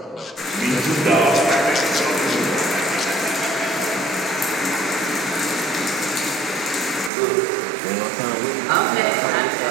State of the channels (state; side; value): drops out; left; at 7.1 s